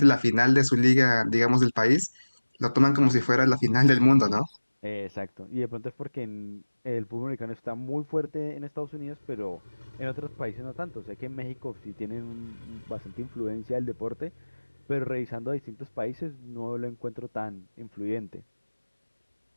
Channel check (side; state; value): both; inverted; correlation -1.00